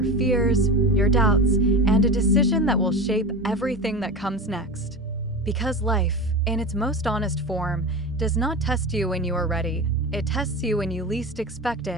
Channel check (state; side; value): normal; both; correlation 0.26